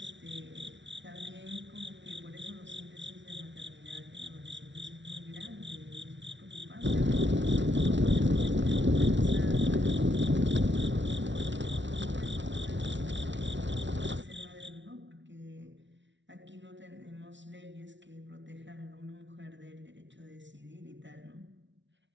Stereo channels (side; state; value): left; late; 0.54 ms